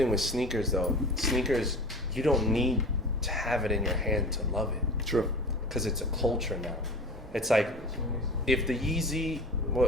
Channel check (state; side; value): normal; both; correlation 0.34